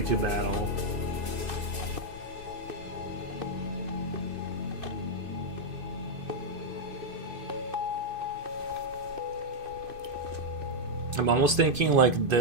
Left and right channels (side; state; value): left; late; 2.5 ms